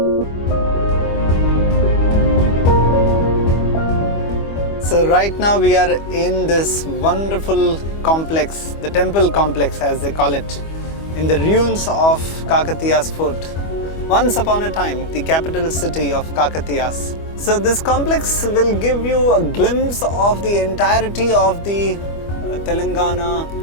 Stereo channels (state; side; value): late; right; 25 ms